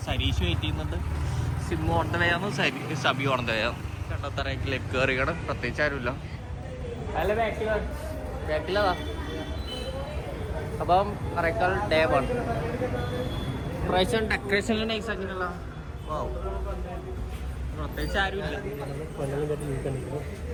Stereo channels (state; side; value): identical; both; correlation 1.00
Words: സരീഷ് വെയിറ്റ് ചെയ്യുന്നുണ്ട്. സിമ്മ് ഓണന്തവയാന്ന്, സബി ഓണന്തവയാന്ന്. കണ്ടത്തറേക്കിലേക്ക് കയറിയാണ്. പ്രത്യേകിച്ച് ആരുമില്ല. അല്ല ബാക്കിലതാ. അപ്പം അറേക്കാൽ ഡേ 1 പ്രാവശ്യം ഡെക്കറേഷനിൽ നൈസ് ആക്കിയിട്ടുള്ള പ്രത്യേകിച്ച് ആരുമില്ല.